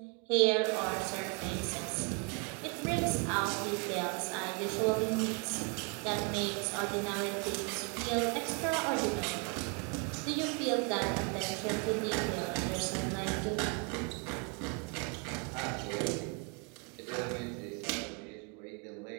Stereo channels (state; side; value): quieter; left; 35.6 dB